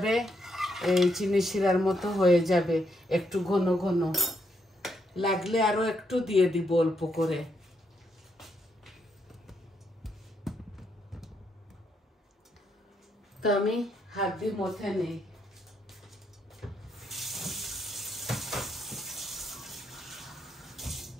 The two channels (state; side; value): normal; both; correlation 0.77